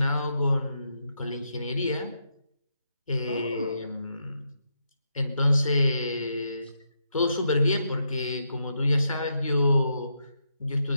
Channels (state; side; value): inverted; both; correlation -0.82